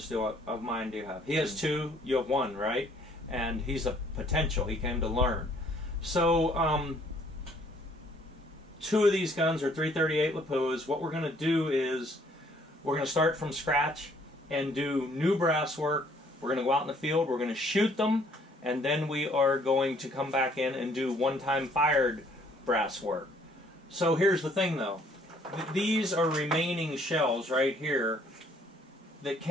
of mine do you have? He has 2, you have 1, right? And he's a potential, he came to learn. So, 2 of these guns are 338 Lapuas. What we're going to do is, we're going to start from scratch and do new brass work. We're going to go out in the field, we're going to shoot them, and then we are going to come back in and do one-time fired brass work. So here's the thing though. These are remaining shells right here that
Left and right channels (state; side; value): normal; both; correlation 0.62